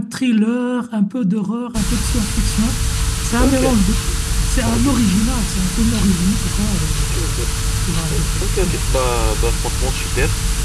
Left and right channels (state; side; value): identical; both; correlation 1.00